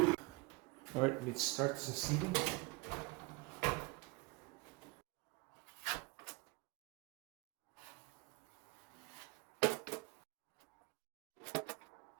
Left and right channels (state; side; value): quieter; left; 25.6 dB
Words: All right, let's start the sealing.